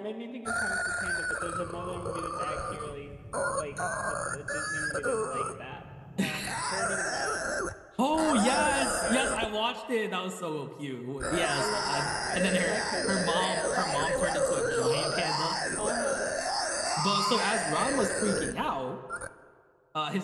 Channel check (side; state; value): both; identical; correlation 1.00